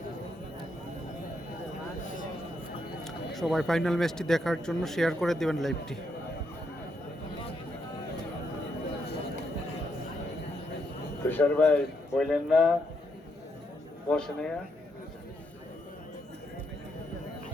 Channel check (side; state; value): both; normal; correlation 0.78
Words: সবাই ফাইনাল ম্যাচটি দেখার জন্য শেয়ার করে দেবেন লাইভটি। তুষার ভাই বললেন না বসে